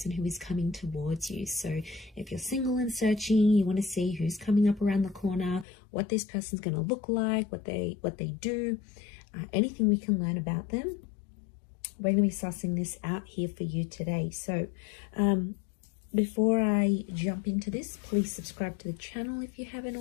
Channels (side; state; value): right; drops out; at 5.7 s